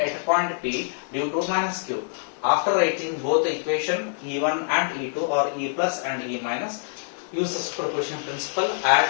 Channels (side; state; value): right; silent; digital silence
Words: a point P due to minus Q. After writing both the equation E1 and E2, or E plus and E minus, use the superposition principle, add